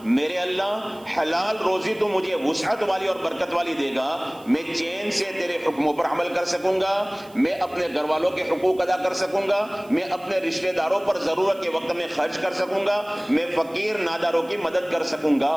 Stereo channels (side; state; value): right; noise; hiss, 25 dB below the sound